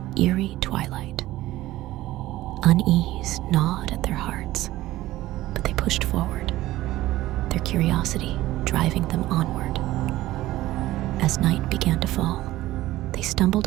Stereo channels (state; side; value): quieter; left; 16.2 dB